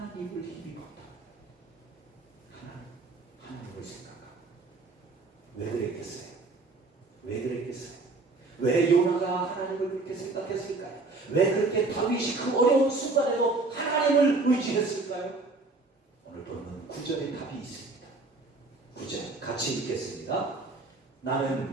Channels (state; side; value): quieter; left; 3.5 dB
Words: 힘입었다. 하나님을 생각하고. 왜 그랬겠어요? 왜 요나가 하나님을 그렇게 생각했을까요? 왜 그렇게 다윗이 그 어려운 순간에도 하나님을 의지했을까요? 오늘 보면 9절에 답이 있습니다. 9절 같이 읽겠습니다.